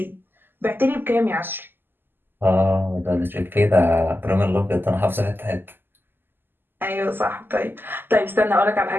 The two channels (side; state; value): left; late; 0.096 ms